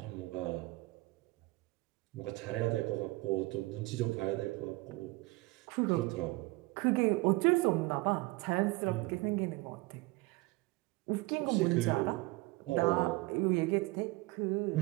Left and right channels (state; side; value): quieter; left; 22.6 dB